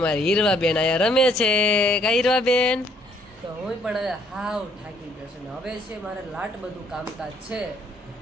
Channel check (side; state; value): both; normal; correlation 0.66